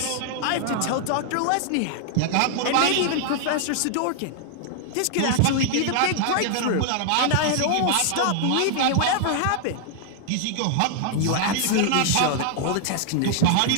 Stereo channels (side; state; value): both; different; correlation 0.00